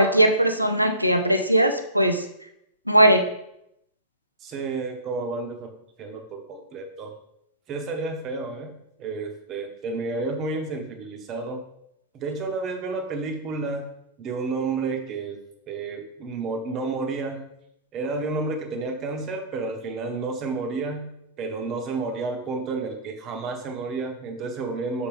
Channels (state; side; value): inverted; both; correlation -0.40